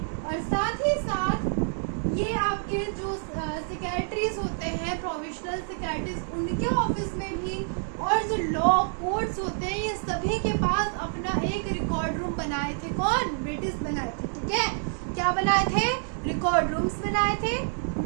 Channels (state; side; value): silent; left; 57 dB below the other